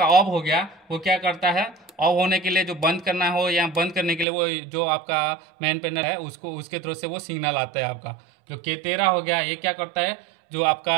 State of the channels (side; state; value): left; drops out; at 4.2 s